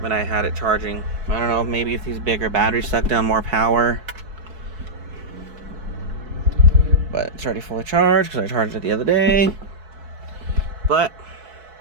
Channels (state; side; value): late; left; 4.7 ms